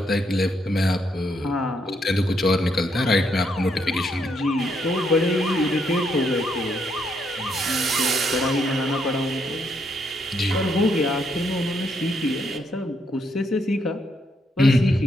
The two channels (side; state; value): both; normal; correlation 0.75